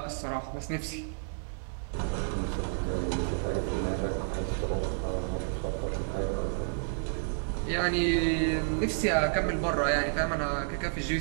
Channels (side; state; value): left; silent; 57 dB below the other